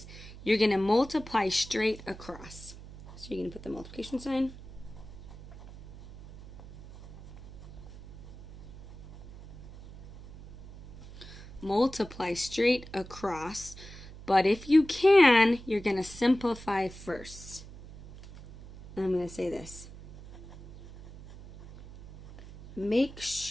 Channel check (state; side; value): noise; right; hum, 16 dB below the sound